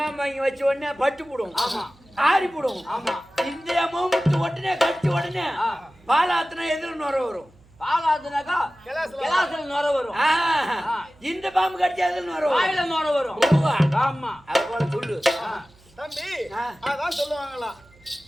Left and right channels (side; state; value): right; noise; hum, 28 dB below the sound